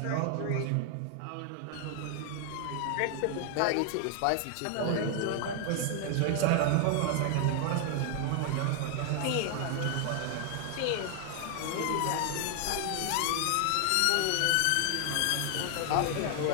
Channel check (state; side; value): different; both; correlation 0.00